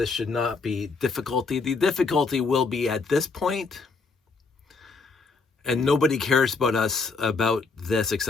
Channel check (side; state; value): right; quieter; 4.3 dB